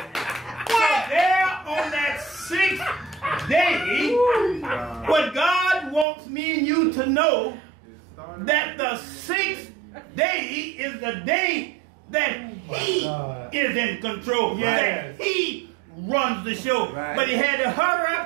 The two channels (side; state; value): left; drops out; at 6.1 s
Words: So there on that 6th day, what God wants me and you to know that the sixth day is the day that he is in control. That he runs the show. But he had to hurry